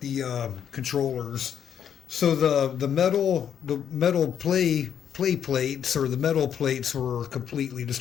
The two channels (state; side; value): quieter; right; 8.6 dB